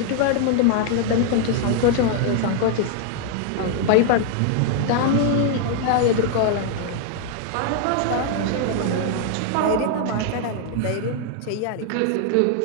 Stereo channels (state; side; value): different; both; correlation 0.00